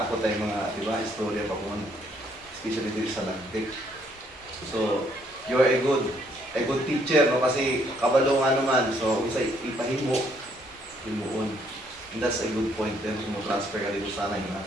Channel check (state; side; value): normal; both; correlation 0.68